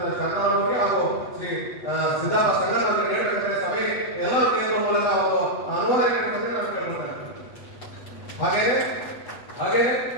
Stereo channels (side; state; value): right; late; 8.2 ms